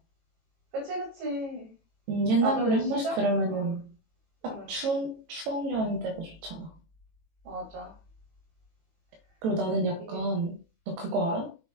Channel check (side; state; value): left; late; 18 ms